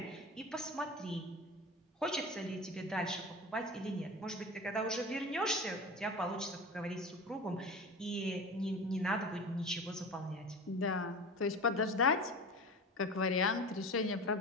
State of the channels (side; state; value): both; normal; correlation 0.32